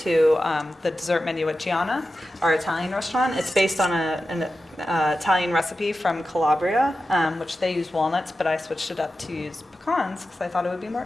the dessert menu at Gianna, our Italian restaurant. It's based on an Italian recipe from Calabria, which they use walnuts, but I switched it up to use pecans because I thought it would be more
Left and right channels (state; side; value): normal; both; correlation 0.92